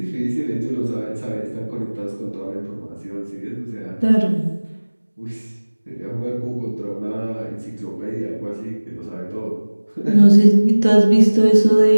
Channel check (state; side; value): inverted; both; correlation -1.00